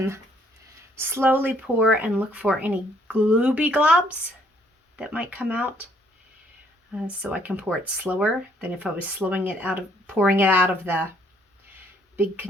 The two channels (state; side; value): normal; both; correlation 0.66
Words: slowly pour and look for any glooby globs that might come out. So I can pour it slower than if I was pouring it out of the big